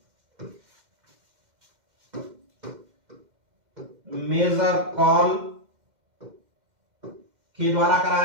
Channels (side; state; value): left; late; 2.1 ms